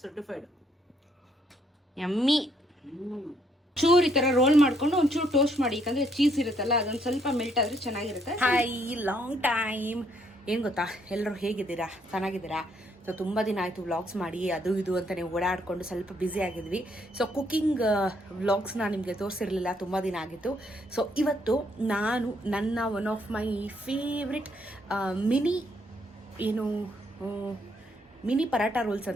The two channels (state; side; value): normal; both; correlation 0.70